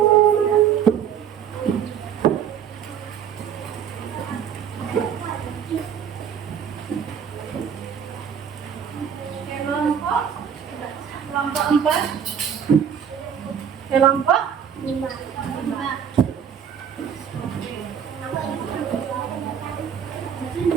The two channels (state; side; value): quieter; left; 8.1 dB